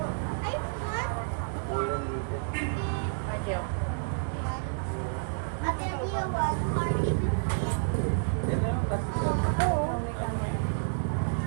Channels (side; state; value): left; silent; 58 dB below the other